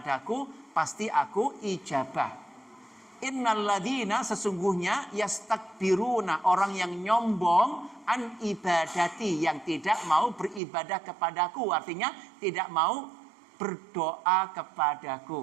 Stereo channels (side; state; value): left; drops out; at 10.6 s